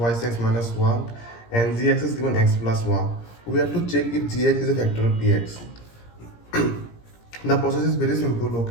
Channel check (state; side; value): late; right; 17 ms